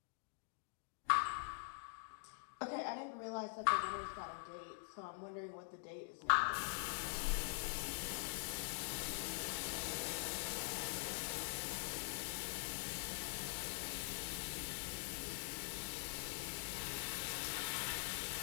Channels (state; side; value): silent; right; digital silence